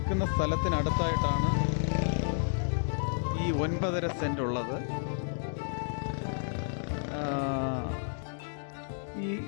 സ്ഥലത്തിനടുത്തായിട്ടാണ് ഈ 9.5 സെൻറ്റ് ഉള്ളത്.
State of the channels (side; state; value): right; silent; digital silence